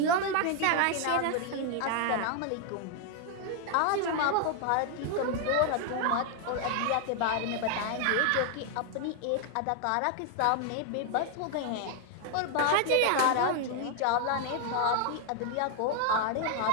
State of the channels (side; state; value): both; different; correlation 0.01